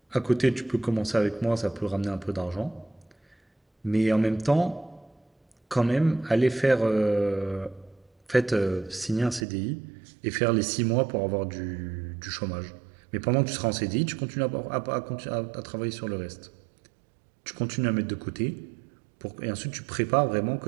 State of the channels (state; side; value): drops out; left; at 9.5 s